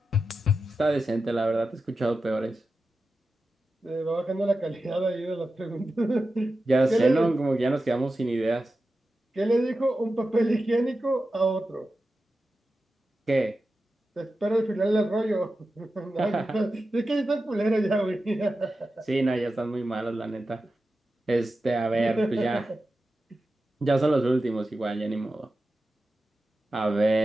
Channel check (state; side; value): normal; both; correlation 0.92